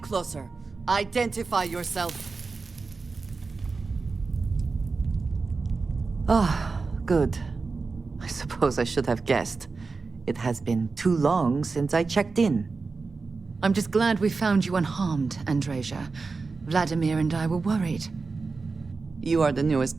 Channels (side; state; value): left; quieter; 4.2 dB